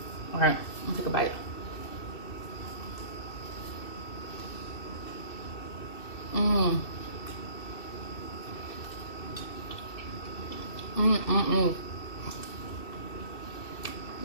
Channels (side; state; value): right; late; 2.7 ms